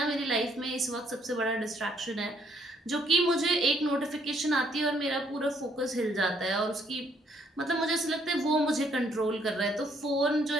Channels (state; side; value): normal; both; correlation 0.68